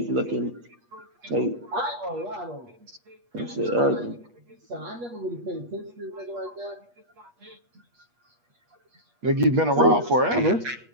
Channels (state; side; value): late; left; 8.4 ms